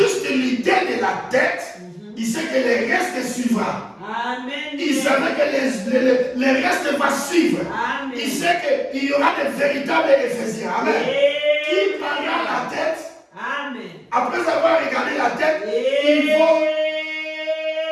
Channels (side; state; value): both; identical; correlation 1.00